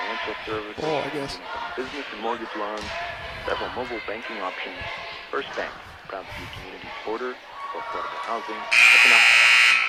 services, Oh, I guess. business and mortgage loans, several mobile banking options. First Bank, proud to be community supporter, affordable housing, economic,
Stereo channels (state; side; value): identical; both; correlation 1.00